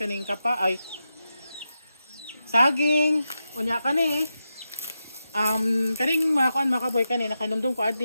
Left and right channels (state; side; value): inverted; both; correlation -0.89